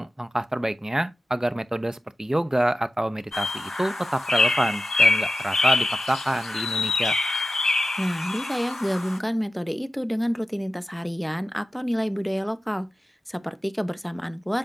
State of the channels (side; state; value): both; normal; correlation 0.93